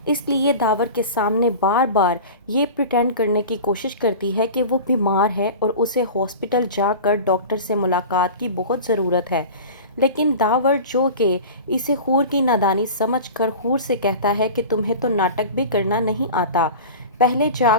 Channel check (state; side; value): inverted; both; correlation -0.34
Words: اس لیے داور کے سامنے بار بار یہ پریٹینڈ کرنے کی کوشش کرتی ہے کہ وہ بیمار ہے اور اسے ہاسپٹل جا کر ڈاکٹر سے ملاقات کی بہت ضرورت ہے۔ لیکن داور جو کہ اسے حور کی نادانی سمجھ کر حور سے کہتا ہے کہ تمہیں تو ناٹک بھی کرنا نہیں آتا، پہلے جا